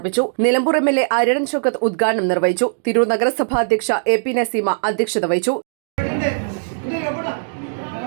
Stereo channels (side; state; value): left; silent; digital silence